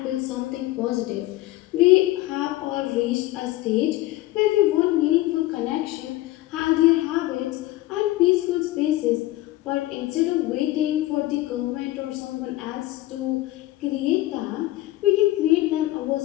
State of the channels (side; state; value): right; quieter; 17.0 dB